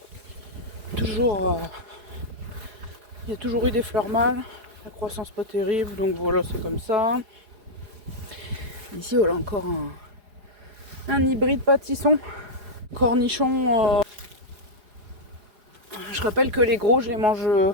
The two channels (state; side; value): late; left; 4.9 ms